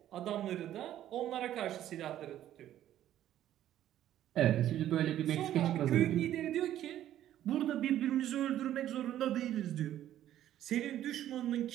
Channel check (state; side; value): quieter; left; 12.1 dB